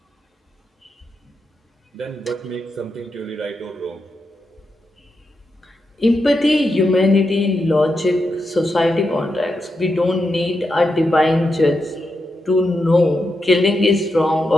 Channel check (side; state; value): both; normal; correlation 0.86